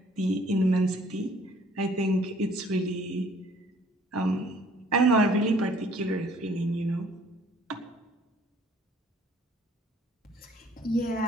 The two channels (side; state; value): both; normal; correlation 0.57